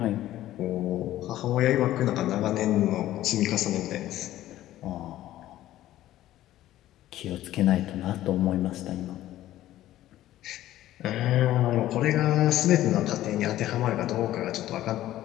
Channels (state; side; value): quieter; right; 14.1 dB